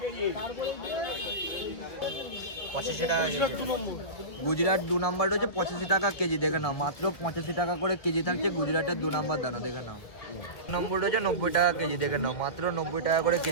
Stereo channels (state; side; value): late; right; 1.8 ms